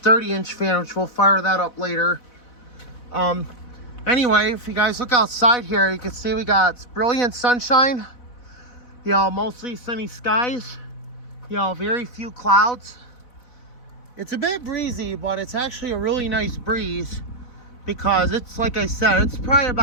fan, which we'll fire that up later. Anyway, if you guys look outside here, you can see we got brilliant sunshine. You know, mostly sunny skies, you know, very few clouds. It's a bit breezy, but it's actually a really nice breeze because it's, like I said, it's probably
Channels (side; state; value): right; late; 4.1 ms